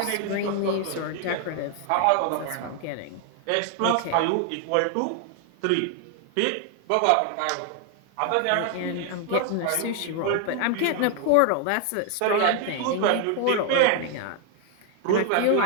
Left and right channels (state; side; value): different; both; correlation 0.00